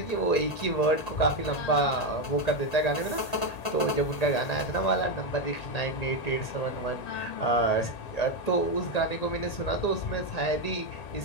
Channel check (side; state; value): right; late; 1.8 ms